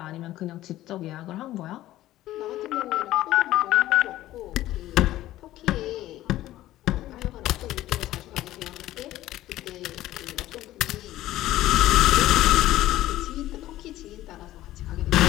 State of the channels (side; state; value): right; quieter; 14.9 dB